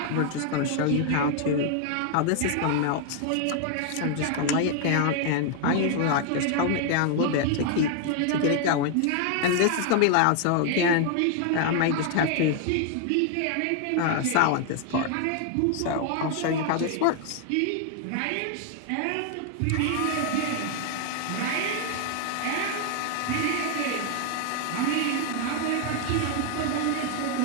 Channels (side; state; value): both; different; correlation 0.00